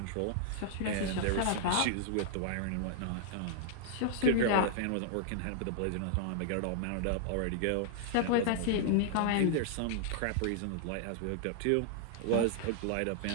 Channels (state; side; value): different; both; correlation -0.01